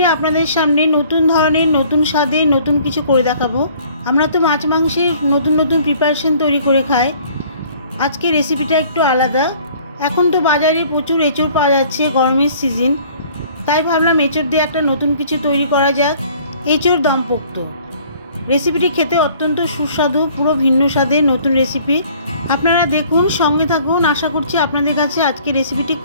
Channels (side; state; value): both; inverted; correlation -0.55